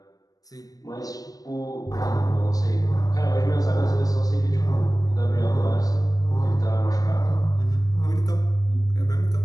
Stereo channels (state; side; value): late; right; 0.18 ms